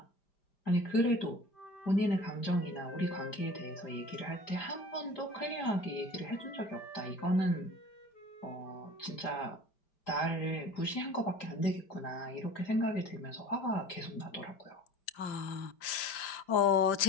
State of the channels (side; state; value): right; late; 5.1 ms